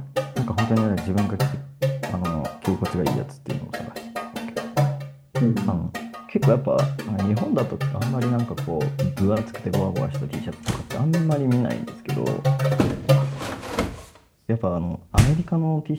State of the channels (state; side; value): identical; both; correlation 1.00